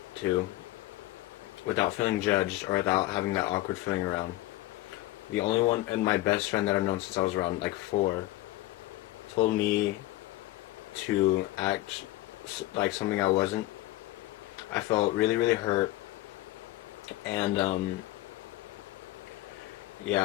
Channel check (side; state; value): right; quieter; 17.2 dB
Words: to without feeling judged or without having that awkward feeling around, the only one, and my best friend that I've known since I was around like 4, told me to act like something I wasn't. I felt really, really hurt, and